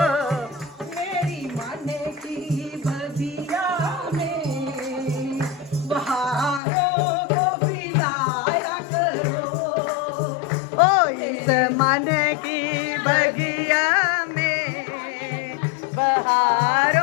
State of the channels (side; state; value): right; drops out; at 6.6 s